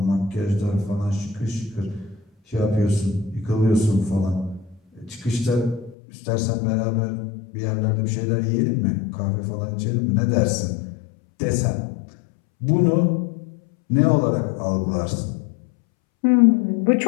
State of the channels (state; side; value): drops out; right; at 6.0 s